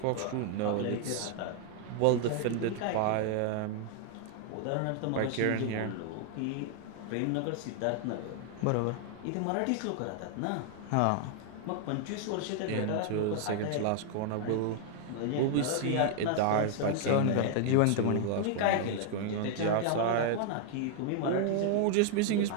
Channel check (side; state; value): both; different; correlation 0.00